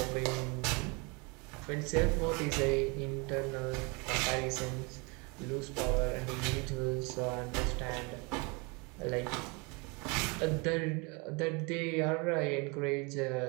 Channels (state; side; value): quieter; left; 29.7 dB